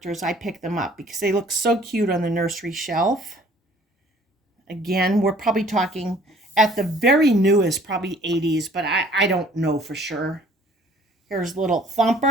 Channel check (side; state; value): both; normal; correlation 0.55